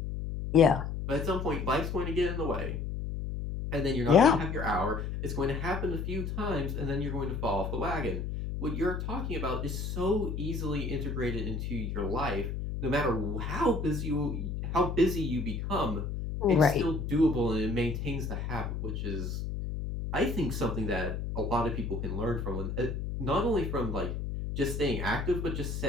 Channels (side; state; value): left; noise; hum, 4 dB below the sound